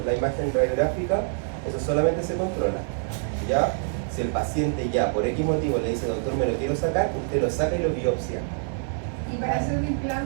la imagen radiográfica, eso solamente se controla, ¿ya? Si el paciente ya por X motivo le dice, doctor, me lo quiero sacar, usted lo saca y lo biopsia. ¿Y Y para hacer un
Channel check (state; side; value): silent; left; 61 dB below the other